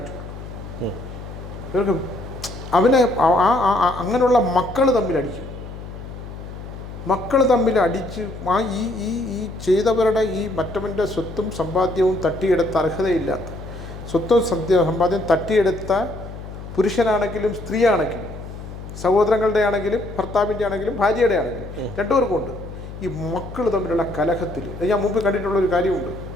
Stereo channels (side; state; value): left; noise; hum, 12 dB below the sound